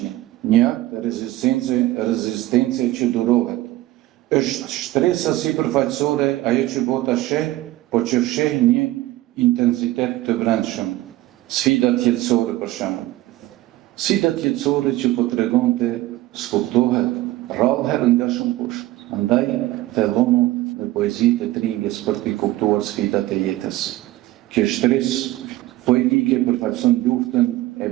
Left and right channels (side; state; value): left; quieter; 16.6 dB